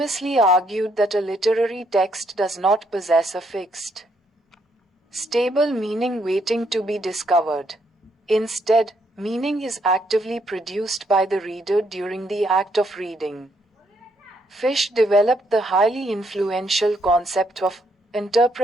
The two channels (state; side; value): normal; both; correlation 0.73